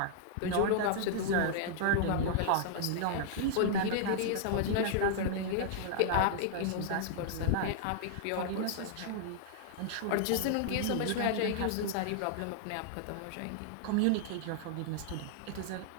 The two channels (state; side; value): different; both; correlation -0.01